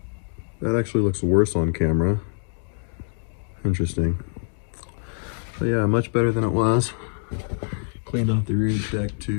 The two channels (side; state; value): right; silent; digital silence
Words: that actually looks worse on camera. Interesting. But yeah, much better than it was. Cleaned off the rear deck